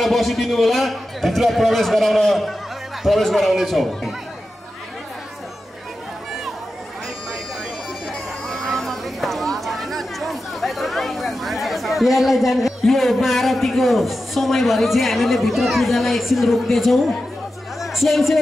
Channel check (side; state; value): both; normal; correlation 0.92